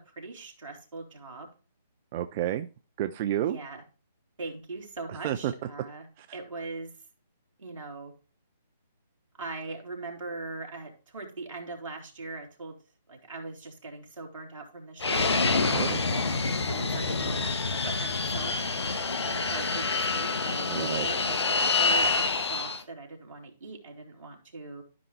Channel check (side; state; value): both; inverted; correlation -0.42